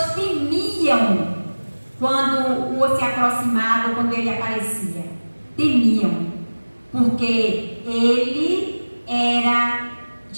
temiam quando o se aproximava, quando ele aparecia. Temiam, porque ele era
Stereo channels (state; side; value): inverted; both; correlation -1.00